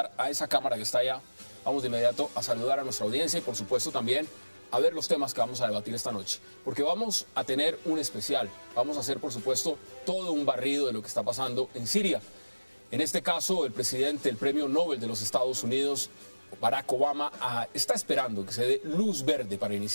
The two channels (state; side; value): inverted; both; correlation -1.00